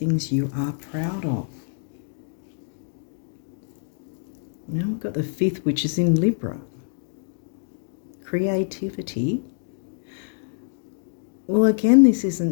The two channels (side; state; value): right; silent; digital silence